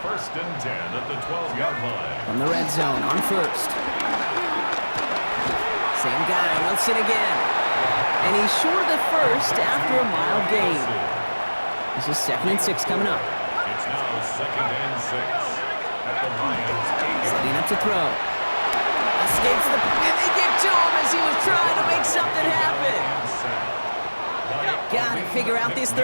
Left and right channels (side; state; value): both; inverted; correlation -1.00